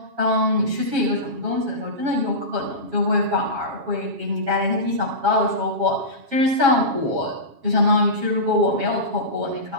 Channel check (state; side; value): late; left; 7.3 ms